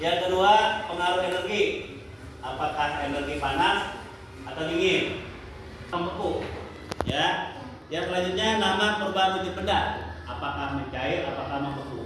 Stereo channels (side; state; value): both; identical; correlation 1.00